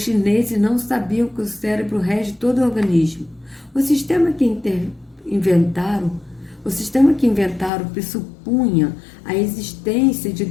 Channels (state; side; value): drops out; right; at 7.7 s